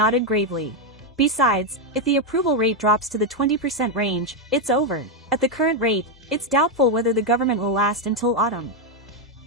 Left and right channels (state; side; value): normal; both; correlation 0.03